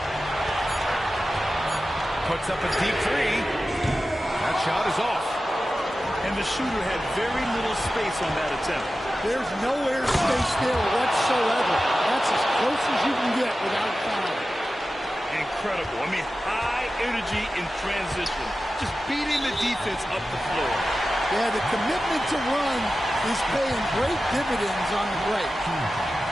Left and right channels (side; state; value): both; normal; correlation 0.94